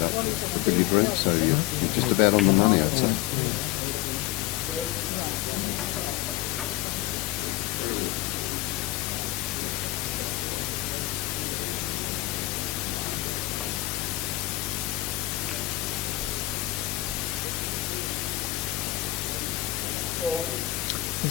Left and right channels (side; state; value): right; quieter; 17.2 dB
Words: up the billiard room, so you're just about on the money, I'd say.